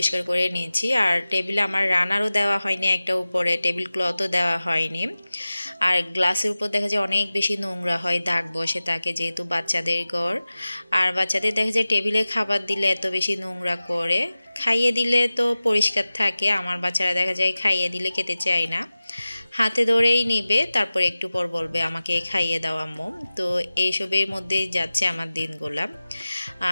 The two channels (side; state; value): both; inverted; correlation -0.97